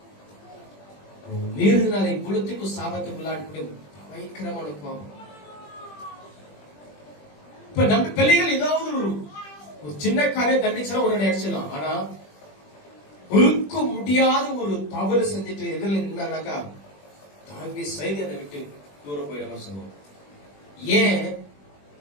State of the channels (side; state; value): right; late; 20 ms